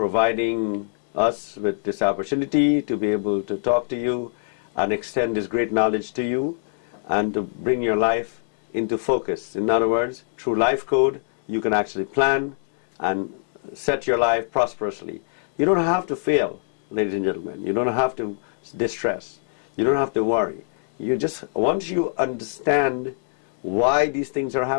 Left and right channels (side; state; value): right; silent; digital silence